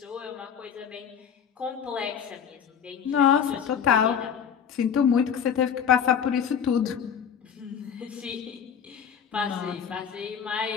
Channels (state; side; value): quieter; right; 7.7 dB